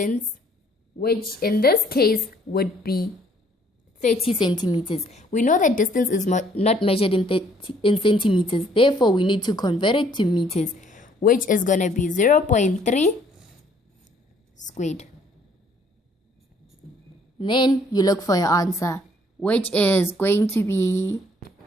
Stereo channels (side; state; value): both; normal; correlation 0.62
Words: which in this case would be 30 centimeters. We know that distance is not measured in centimeters. Therefore, we need to convert it to meters, which is going to be 0.3 squared. Then you look for your answer, which is going to be